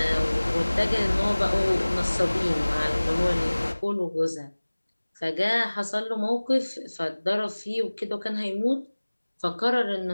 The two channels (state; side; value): inverted; both; correlation -1.00